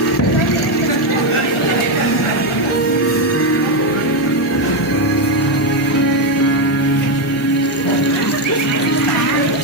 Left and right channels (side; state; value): both; normal; correlation 0.06